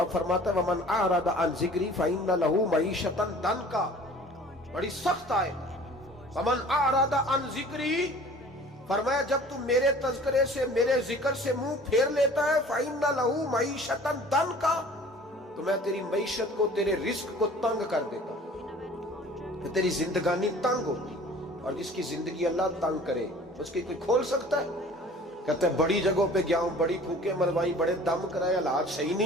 फरमाता है, वमन आरदा अन ज़िक्री फइन्न लहू मईशतन दनका, बड़ी सख्त आयत। वमन आरदा अन ज़िक्री, फरमाया जब तू मेरे तज़किरे से, मेरे जिक्र से मुंह फेर लेता है, फइन्न लहू मईशतन दनका, तो मैं तेरी मईशत को, तेरे रिस्क को तंग कर देता हूं, तो तेरी जिंदगानी तंग होती। और जिसकी जिंदगी अल्लाह तंग करे उसकी कोई खोल सकता है? कहते हैं बड़ी जगहों पे गया हूं, बड़ी फूके मरवाई, बड़े दम कराए, हालात सही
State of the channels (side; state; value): both; normal; correlation 0.47